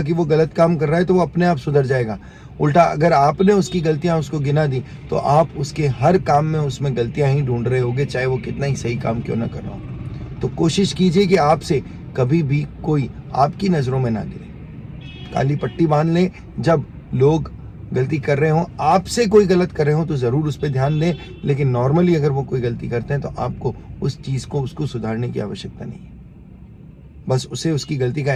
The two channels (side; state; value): both; identical; correlation 1.00